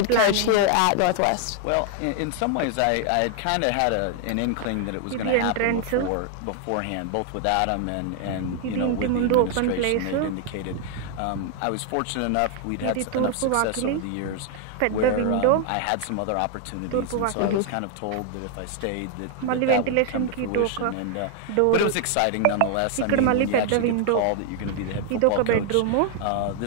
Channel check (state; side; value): different; both; correlation 0.00